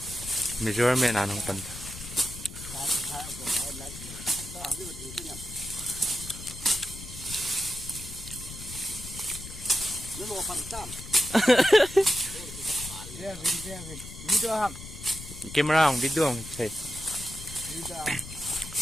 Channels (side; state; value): left; noise; rumble, 12 dB below the sound